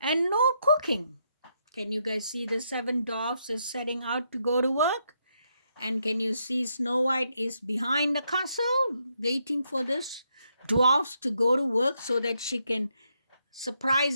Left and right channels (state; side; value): inverted; both; correlation -0.78